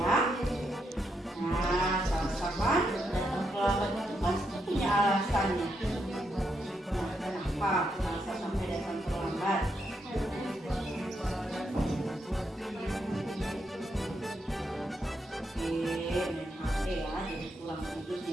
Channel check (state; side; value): normal; both; correlation 0.80